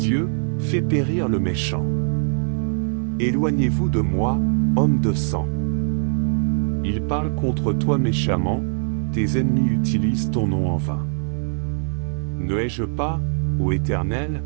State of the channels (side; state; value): left; silent; digital silence